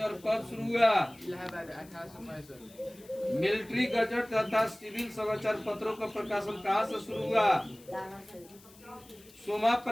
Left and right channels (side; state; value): left; noise; hiss, 24 dB below the sound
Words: कब शुरू हुआ? मिलिट्री गजट तथा सिविल समाचार पत्रों का प्रकाशन कहां से शुरू हुआ? सोमा